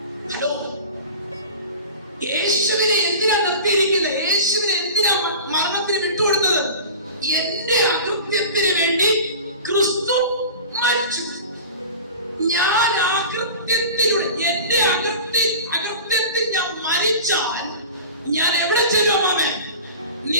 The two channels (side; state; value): both; inverted; correlation -0.36